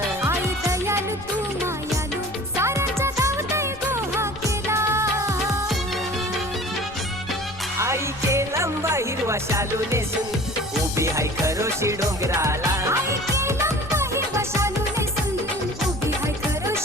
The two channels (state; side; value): noise; left; rumble, 19 dB below the sound